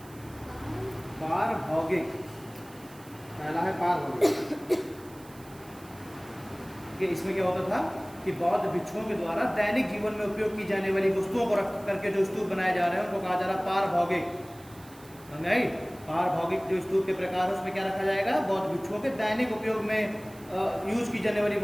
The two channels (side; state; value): right; noise; hiss, 23 dB below the sound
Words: पहला है पारभौगिक। इसमें क्या होता था कि बौद्ध भिक्षुओं के द्वारा दैनिक जीवन में उपयोग की जाने वाली वस्तुओं को रख करके जो स्तूप बनाए जा रहे हैं उनको कहा जा रहा है पारभौगिक। पारभौगिक जो स्तूप के प्रकार है उसमें क्या रखा जाएगा? बौद्ध भिक्षुओं के दैनिक उपयोग में यूज की जाने वाली